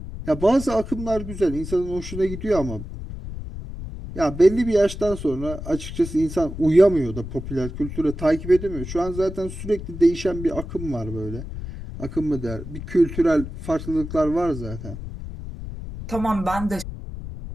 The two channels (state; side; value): noise; left; rumble, 9 dB below the sound